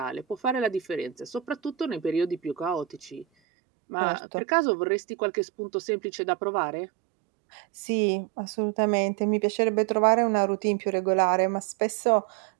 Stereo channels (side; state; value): left; drops out; at 3.2 s